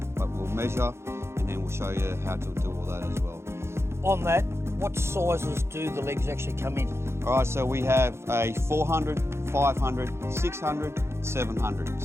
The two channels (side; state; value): left; late; 0.13 ms